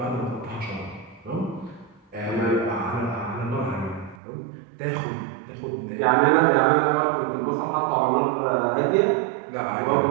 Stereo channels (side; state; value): left; drops out; at 4.2 s